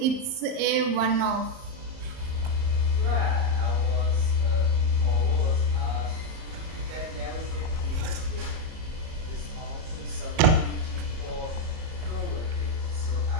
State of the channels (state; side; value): late; left; 38 ms